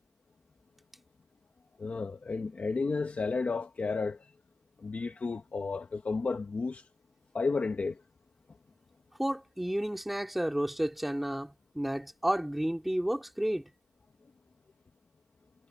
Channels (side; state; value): both; normal; correlation 0.96